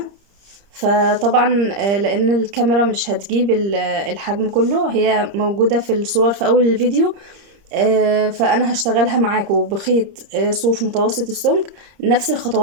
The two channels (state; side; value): late; left; 30 ms